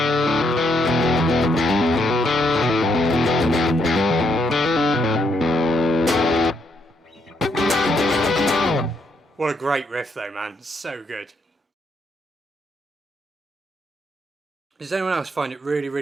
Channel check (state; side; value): normal; both; correlation 0.75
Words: What a great riff though, man. It's so good. Does anyone else find it really,